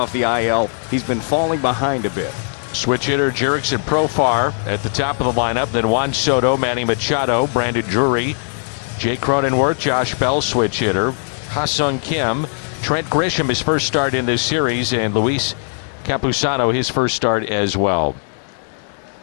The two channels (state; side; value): silent; right; digital silence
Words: the IL. He's been falling behind a bit. Switch hitter Jurickson Profar at the top of the lineup. Then Juan Soto, Manny Machado, Brandon Drury, Jake Cronenworth, Josh Bell, switch hitter. Ha-Sung Kim, Trent Grisham, his first start in this series, and Luis Campusano, his first start as well.